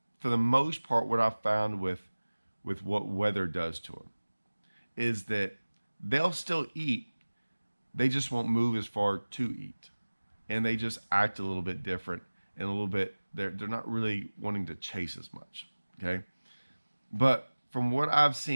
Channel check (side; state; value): both; inverted; correlation -1.00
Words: for the most part, what I found with what weather does to them, is that they'll still eat. They just won't move as far to eat. And they just act a little bit different and a little bit, they're not really wanting to chase as much, okay? But from what I've